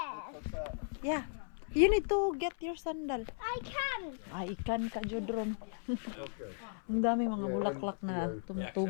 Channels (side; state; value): right; silent; 54 dB below the other